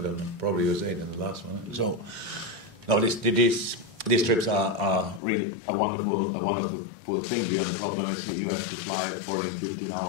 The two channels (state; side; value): drops out; right; at 5.2 s